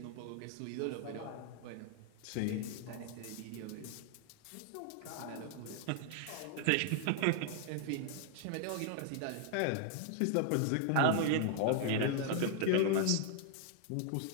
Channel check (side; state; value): both; different; correlation 0.00